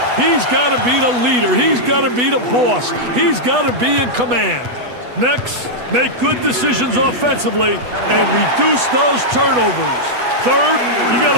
He's got to be the leader. He's got to be the boss. He's got to be in command. Next, make good decisions offensively and reduce those turnovers. Third, you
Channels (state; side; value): late; left; 8.2 ms